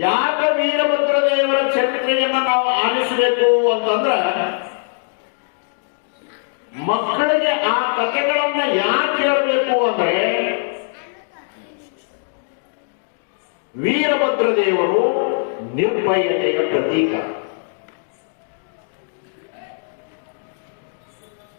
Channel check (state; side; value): silent; right; digital silence